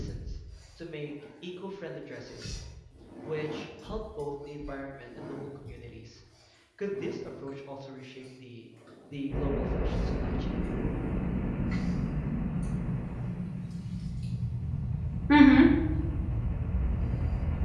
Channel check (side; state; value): both; identical; correlation 1.00